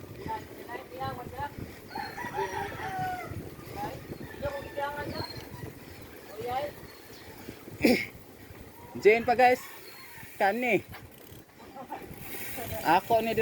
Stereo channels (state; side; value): identical; both; correlation 1.00